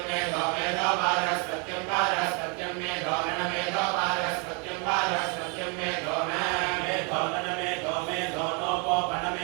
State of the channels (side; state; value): left; quieter; 34.3 dB